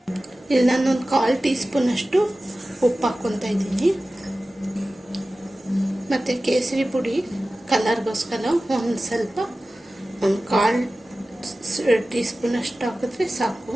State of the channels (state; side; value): normal; both; correlation 0.96